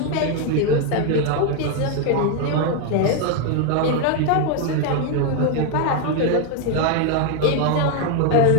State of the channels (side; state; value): both; different; correlation 0.01